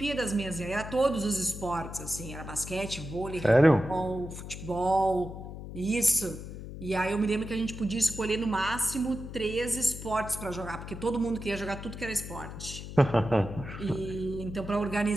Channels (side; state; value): left; noise; hum, 10 dB below the sound